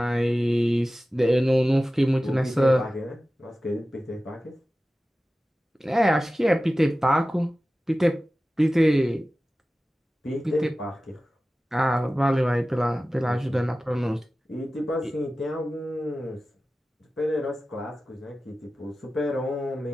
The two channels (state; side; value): normal; both; correlation 0.95